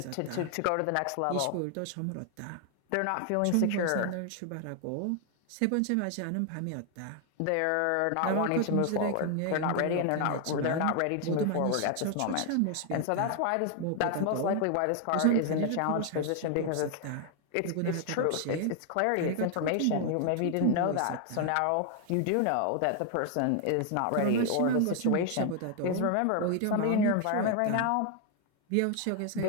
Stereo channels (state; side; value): different; both; correlation 0.00